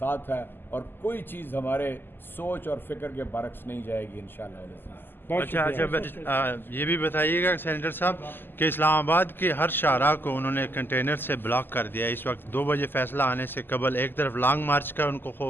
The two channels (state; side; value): late; right; 0.097 ms